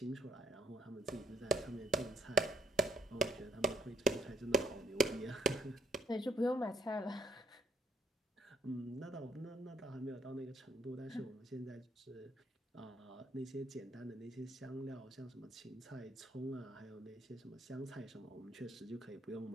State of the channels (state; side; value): normal; both; correlation 0.69